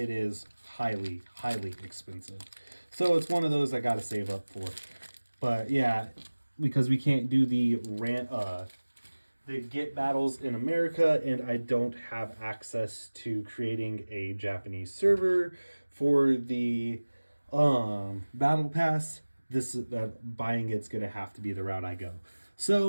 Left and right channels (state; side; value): inverted; both; correlation -1.00